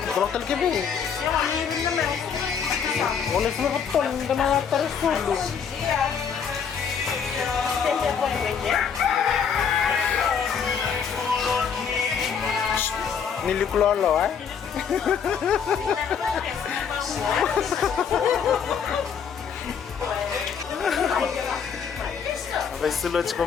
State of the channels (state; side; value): quieter; right; 6.9 dB